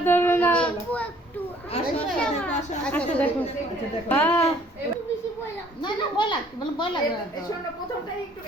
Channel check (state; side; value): normal; both; correlation 0.59